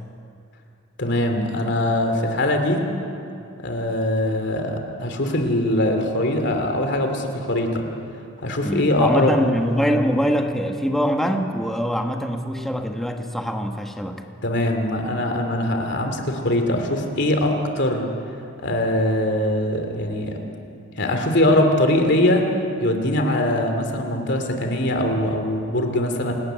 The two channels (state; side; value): normal; both; correlation 0.36